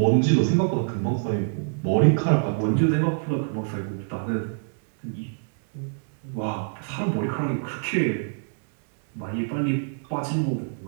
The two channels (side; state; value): left; silent; digital silence